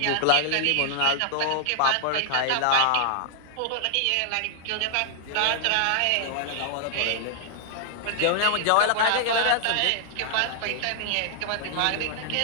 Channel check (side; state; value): both; different; correlation 0.00